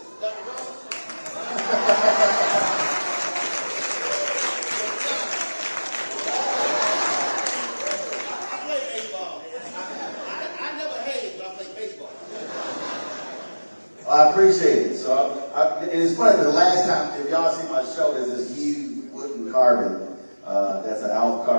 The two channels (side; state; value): both; inverted; correlation -1.00